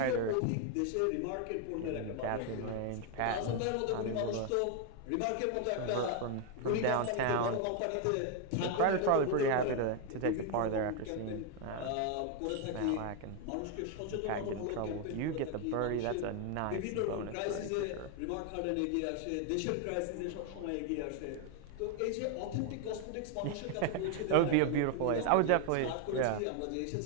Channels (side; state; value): both; different; correlation 0.00